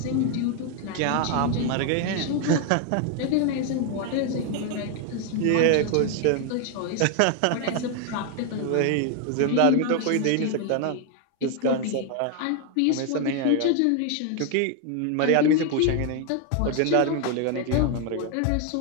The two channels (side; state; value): both; different; correlation 0.00